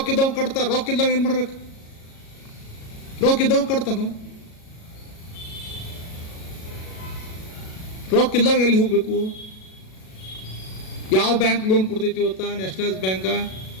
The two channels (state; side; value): late; right; 37 ms